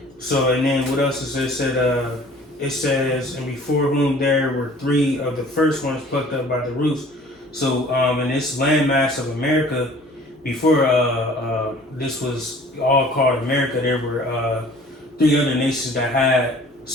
So, and then what else is it? It says, and before whom there were 3 of the first ones plucked up by the roots. So, in this landmass of America, before this was all called America, there were 3 other nations that had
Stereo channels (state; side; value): normal; both; correlation 0.50